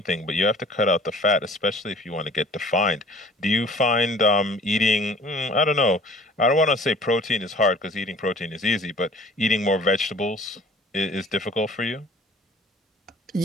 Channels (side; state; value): both; normal; correlation 0.49